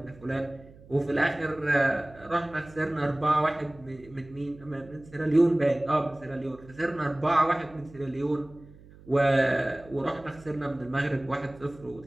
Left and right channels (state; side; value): noise; right; hum, 22 dB below the sound